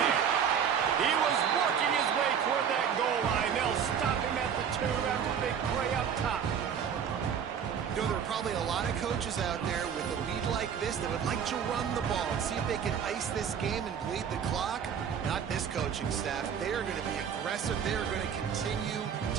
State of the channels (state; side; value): quieter; left; 7.7 dB